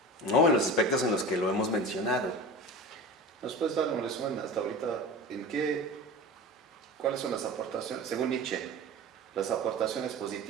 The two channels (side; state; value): both; normal; correlation 0.33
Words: ¿no? En los aspectos en los que lo hemos mencionado. ¿Nos puedes dar un resumen hasta ahorita cuáles son las aportaciones, según Nietzsche, las aportaciones